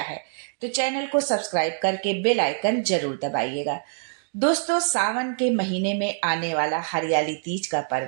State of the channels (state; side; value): silent; left; digital silence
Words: है तो चैनल को सब्सक्राइब करके बेल आइकन जरूर दबाइएगा। दोस्तों, सावन के महीने में आने वाला हरियाली तीज का